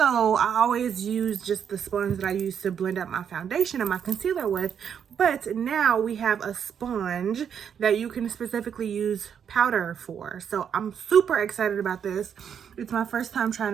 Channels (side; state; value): left; quieter; 7.9 dB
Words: I always use just the sponge that I use to blend up my foundation and my concealer with. But now we have a sponge that you can specifically use powder for. So I'm super excited about this. It's my first time trying